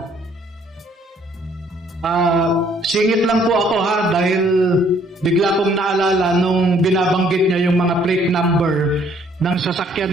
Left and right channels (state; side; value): normal; both; correlation 0.63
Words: Singit lang po ako ha, dahil bigla kong naalala nung binabanggit niya yung mga plate number ng